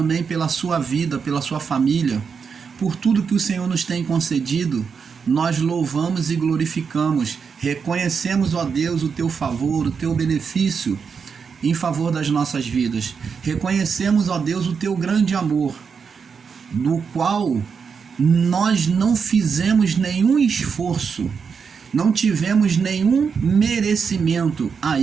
pela sua vida, pela sua família, por tudo que o Senhor nos tem concedido. Nós louvamos e glorificamos, reconhecemos, ó Deus, o teu favor, o teu benefício em favor das nossas vidas. Reconhecemos, ó Deus, o teu grande amor, no qual nós não fizemos nenhum esforço, não tivemos nenhum merecimento a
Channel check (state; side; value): quieter; left; 6.0 dB